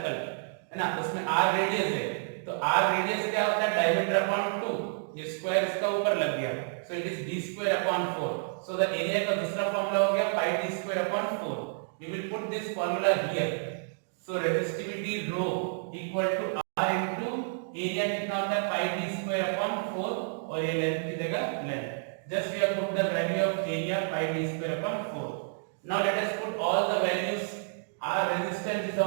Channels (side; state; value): left; silent; digital silence